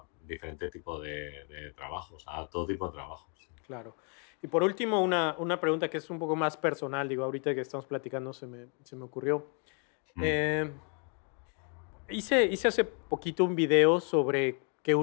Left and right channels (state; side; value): quieter; right; 38.6 dB